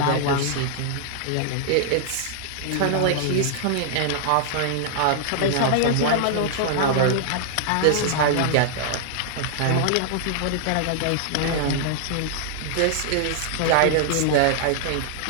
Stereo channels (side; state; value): both; different; correlation -0.01